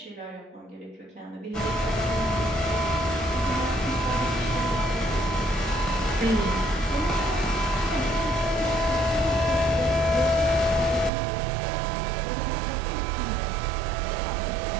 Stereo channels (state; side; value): drops out; left; at 11.1 s